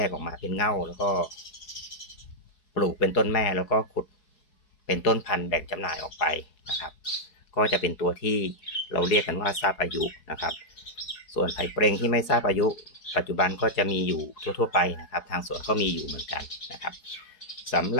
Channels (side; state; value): right; late; 4.7 ms